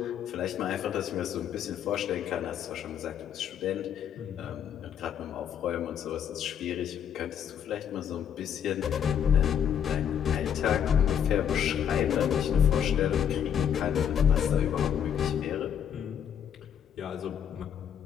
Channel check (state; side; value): quieter; right; 8.7 dB